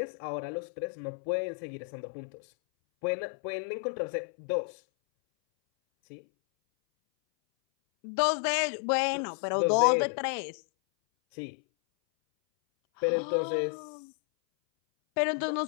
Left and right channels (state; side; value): silent; right; 57 dB below the other